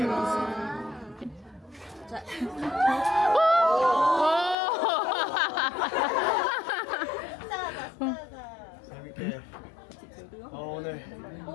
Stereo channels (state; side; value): drops out; right; at 4.5 s